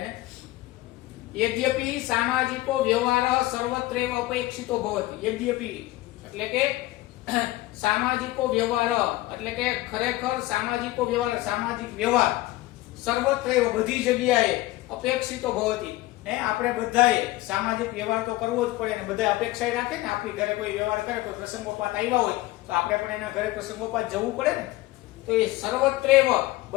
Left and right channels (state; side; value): quieter; right; 18.0 dB